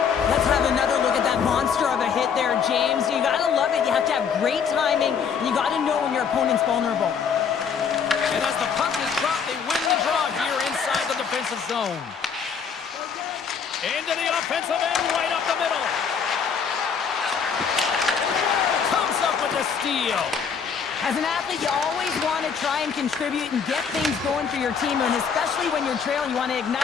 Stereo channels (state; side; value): quieter; right; 6.6 dB